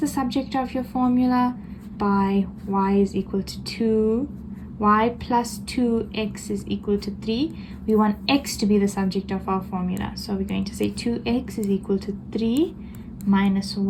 subject of your formula by y is equal to 2, y plus 2x is equal to 3. We want x to be the subject of our formula. So we're going to say 2x is equal to 3 minus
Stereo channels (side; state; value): both; identical; correlation 1.00